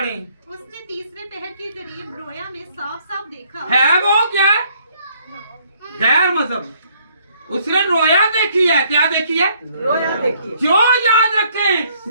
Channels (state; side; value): inverted; both; correlation -0.65